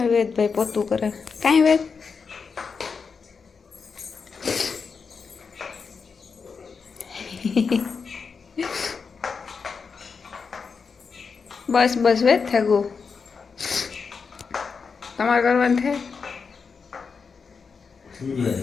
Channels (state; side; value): quieter; right; 5.4 dB